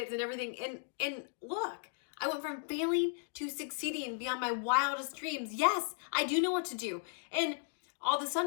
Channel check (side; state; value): right; silent; digital silence